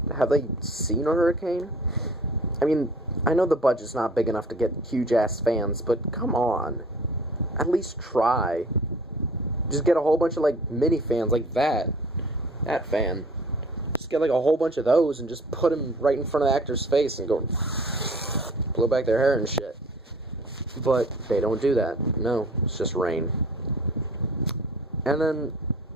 Have they seen a hurricane? I mean, I know the budget's not big enough to get huge-ass fans, but come on. At least try. Just get a whole bunch of, like, mini fans like that. That fan. Just get, like, a whole bunch of those and just put them right in front of the actor's face and go... blow back their hair and shit. But they don't do that. No, it's just rain. And then...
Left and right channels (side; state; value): both; normal; correlation 0.49